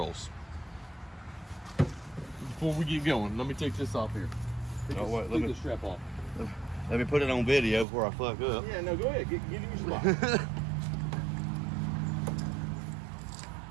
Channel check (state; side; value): drops out; left; at 7.9 s